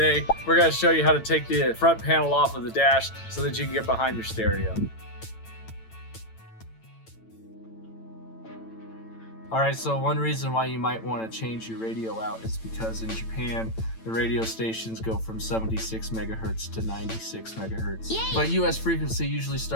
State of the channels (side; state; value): right; late; 8.9 ms